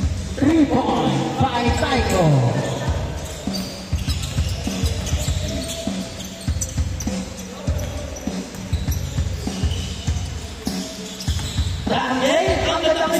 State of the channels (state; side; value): identical; both; correlation 1.00